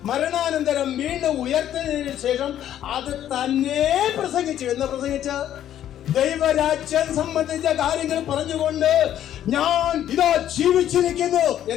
മരണാനന്തരം വീണ്ടും ഉയർത്തതിനു ശേഷം അത് തന്നെ പ്രസംഗിച്ചു. എന്ന് പ്രസംഗിച്ച ദൈവരാജ്യം സംബന്ധിച്ച കാര്യങ്ങൾ പറഞ്ഞുകൊണ്ട് ഞാൻ ഇതാ ജീവിച്ചിരിക്കുന്നു.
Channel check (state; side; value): quieter; right; 11.2 dB